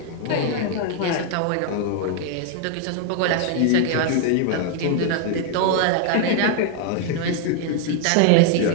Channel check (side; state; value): both; different; correlation 0.00